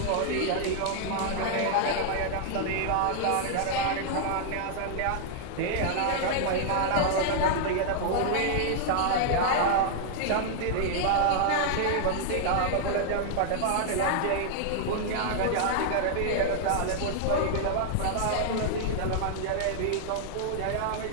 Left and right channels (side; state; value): both; different; correlation -0.01